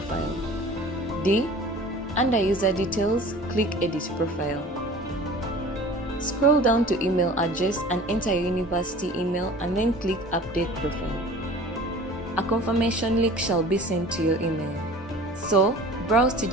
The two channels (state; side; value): normal; both; correlation 0.43